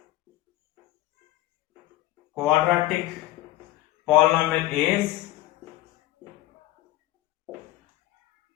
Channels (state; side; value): quieter; right; 16.3 dB